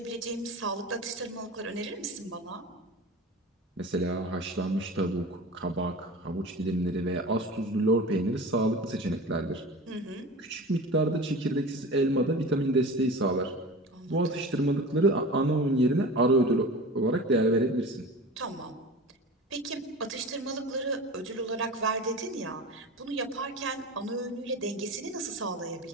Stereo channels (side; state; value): both; normal; correlation 0.34